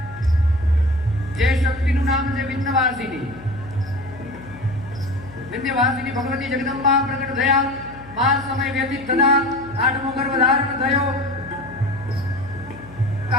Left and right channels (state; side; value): noise; left; hum, 19 dB below the sound